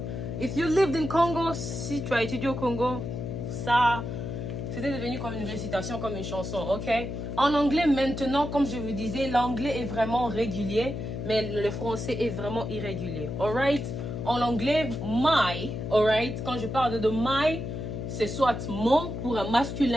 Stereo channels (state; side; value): noise; left; hum, 5 dB below the sound